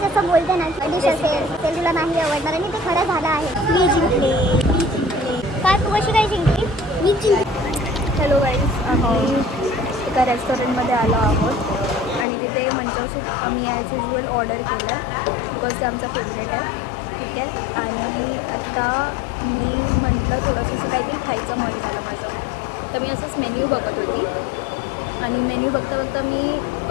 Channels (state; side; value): drops out; right; at 12.2 s